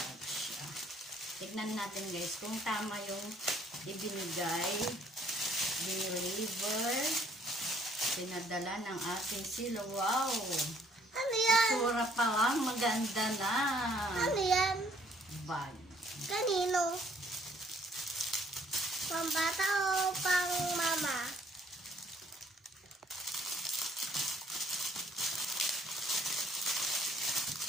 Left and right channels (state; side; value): normal; both; correlation 0.63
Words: siya. Tignan natin, guys, kung tama yung ibinigay, deliver, pinadala ng ating sila. Wow! Ano yan? Sura pa lang, maganda na. Ano yan? Bag. Kanino? Pang bata o pang mama?